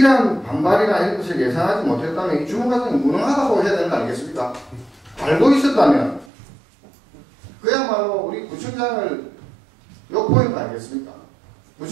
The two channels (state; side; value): drops out; left; at 6.2 s